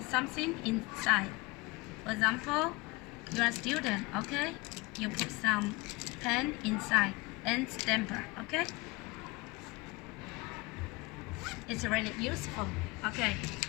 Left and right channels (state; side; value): quieter; right; 24.4 dB